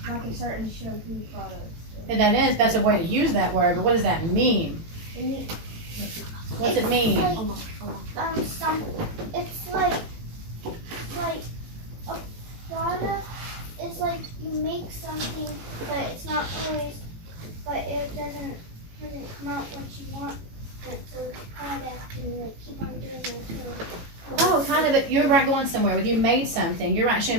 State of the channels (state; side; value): late; left; 18 ms